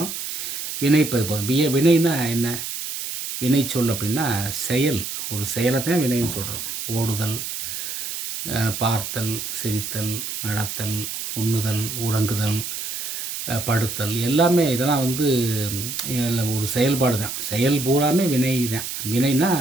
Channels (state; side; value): noise; right; hiss, 5 dB below the sound